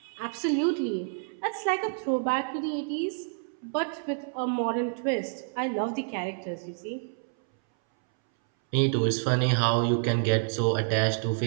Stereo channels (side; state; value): left; silent; 59 dB below the other